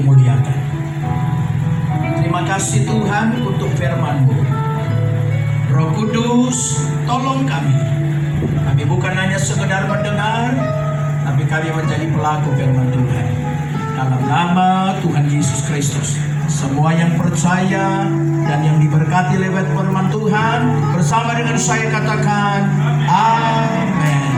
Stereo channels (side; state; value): both; identical; correlation 1.00